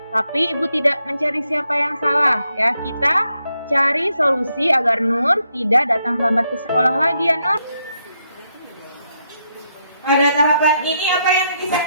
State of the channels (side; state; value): both; inverted; correlation -0.79